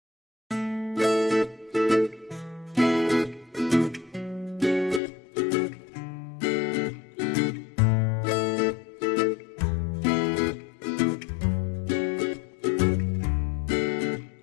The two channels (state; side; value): drops out; right; at 5.0 s